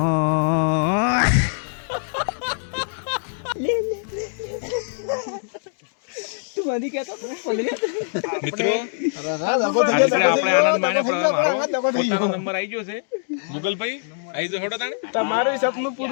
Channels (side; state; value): right; silent; digital silence